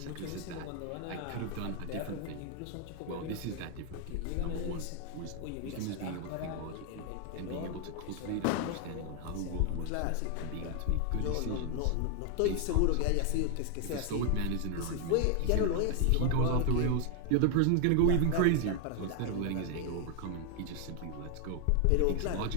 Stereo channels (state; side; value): different; both; correlation 0.00